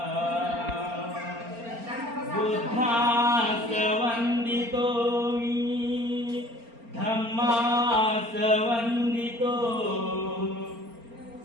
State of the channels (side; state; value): left; late; 4.3 ms